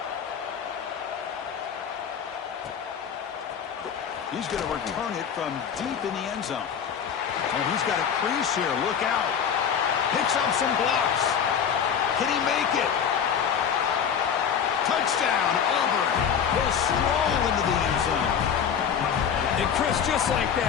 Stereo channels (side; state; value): right; quieter; 7.7 dB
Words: He's going to return it from deep in the end zone. And he's got a crease here. Look out. Picks up some blocks. Can he make it? Touchdown, Auburn. He'll stroll into the end zone. And Chris, just like